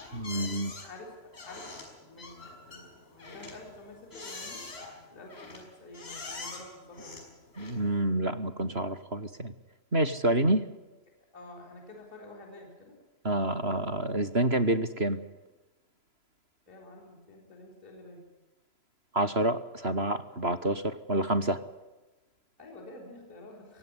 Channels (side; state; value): left; late; 3.0 ms